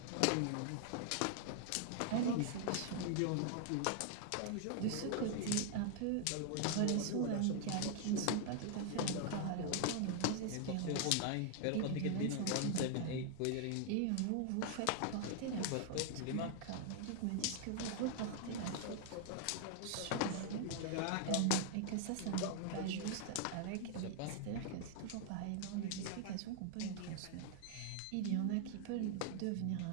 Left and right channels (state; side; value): different; both; correlation 0.00